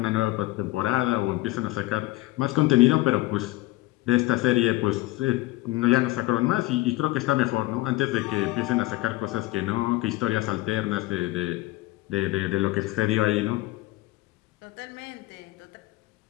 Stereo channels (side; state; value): right; quieter; 18.9 dB